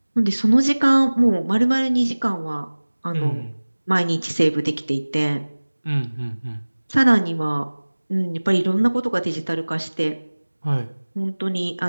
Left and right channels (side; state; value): both; inverted; correlation -1.00